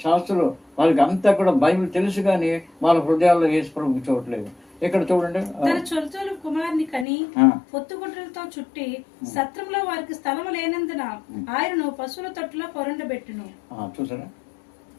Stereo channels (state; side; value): drops out; right; at 7.1 s